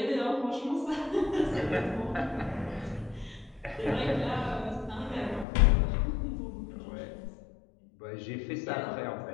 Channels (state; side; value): drops out; right; at 5.5 s